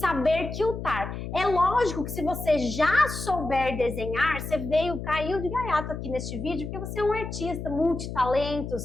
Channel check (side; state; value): left; noise; hum, 7 dB below the sound